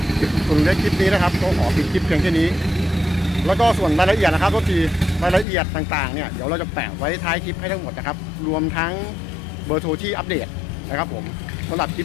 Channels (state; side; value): drops out; right; at 5.5 s